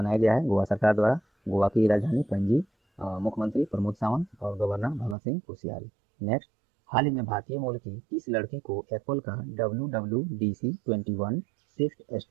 गया है गोवा सरकार द्वारा। गोवा की राजधानी पणजी, मुख्यमंत्री प्रमोद सावंत और गवर्नर भगत सिंह कोश्यारी। नेक्स्ट, हाल ही में भारतीय मूल की किस लड़की को एप्पल का WWDC 21 स्विफ्ट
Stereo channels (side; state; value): left; drops out; at 5.2 s